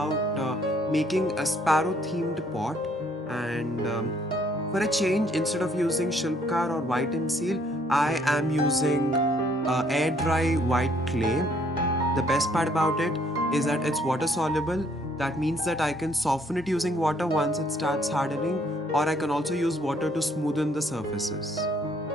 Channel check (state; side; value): normal; both; correlation 0.65